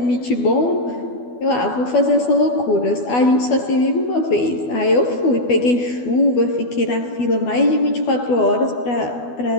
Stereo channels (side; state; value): right; late; 12 ms